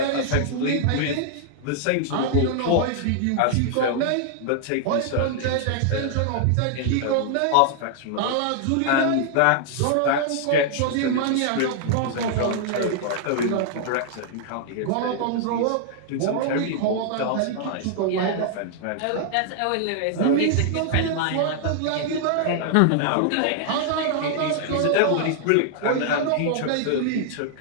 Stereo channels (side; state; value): both; different; correlation -0.01